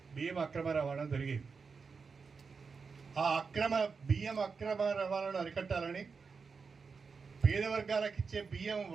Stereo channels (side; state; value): left; quieter; 5.1 dB